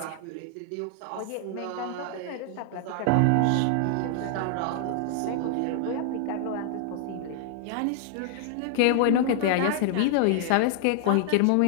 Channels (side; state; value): both; different; correlation 0.00